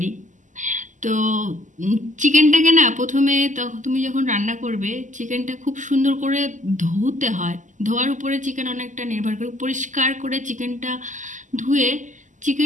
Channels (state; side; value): late; left; 0.37 ms